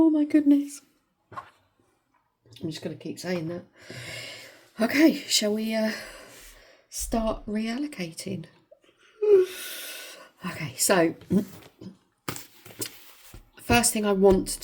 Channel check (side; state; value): both; identical; correlation 1.00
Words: my goodness. I'm just going to keep saying that. Okay, shall we start reallocating? Okay, so first thing I want